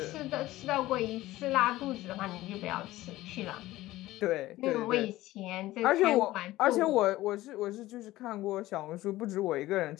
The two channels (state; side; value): quieter; right; 16.7 dB